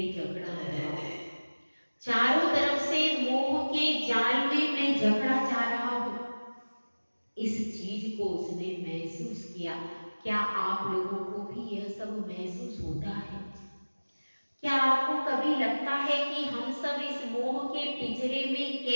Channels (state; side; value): inverted; both; correlation -1.00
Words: जकड़ा हुआ हूं, चारों तरफ से मोह के जाल में मैं जकड़ा जा रहा हूं। इस चीज को उसने महसूस किया। क्या आप लोगों को भी यह सब महसूस होता है? क्या आपको कभी लगता है कि हम सब इस मोह के पिंजरे में